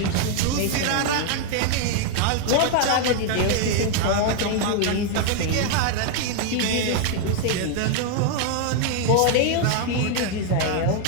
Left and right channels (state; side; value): different; both; correlation 0.00